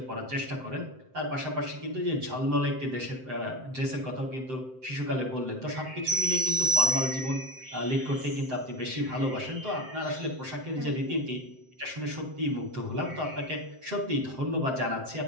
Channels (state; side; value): late; left; 7.7 ms